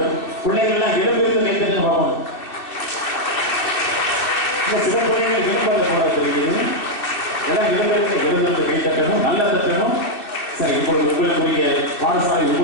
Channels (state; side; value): late; right; 2.6 ms